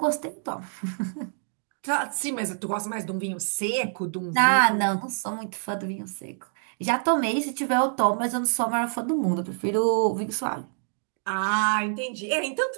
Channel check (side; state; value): left; silent; digital silence